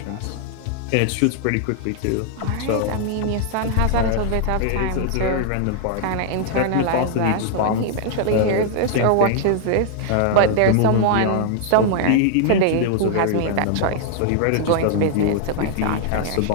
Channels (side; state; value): both; different; correlation -0.01